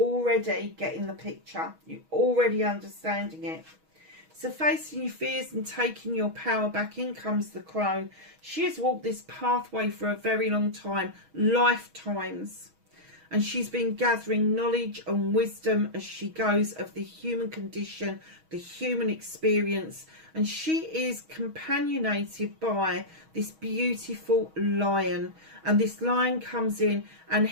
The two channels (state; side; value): late; left; 6.3 ms